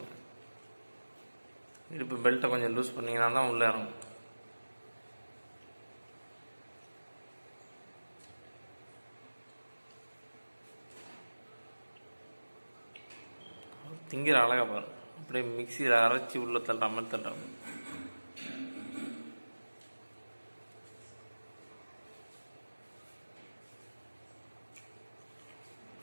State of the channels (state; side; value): inverted; both; correlation -1.00